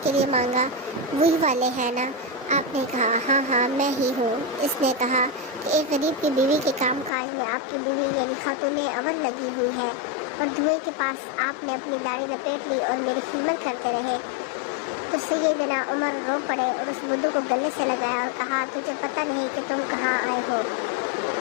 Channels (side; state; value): right; drops out; at 7.1 s